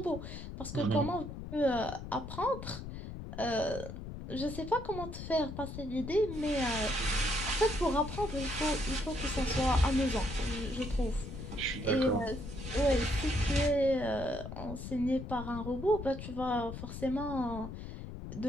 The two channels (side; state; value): left; noise; rumble, 9 dB below the sound